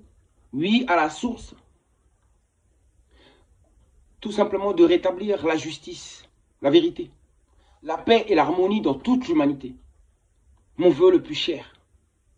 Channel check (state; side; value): identical; both; correlation 1.00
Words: oui, à la source, tout simplement de rétablir la justice, la vérité, la paix et l'harmonie dans toute l'humanité. Mon vœu le plus cher.